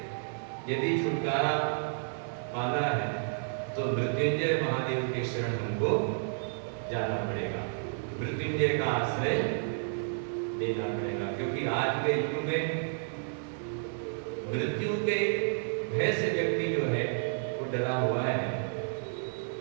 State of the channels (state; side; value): silent; left; 57 dB below the other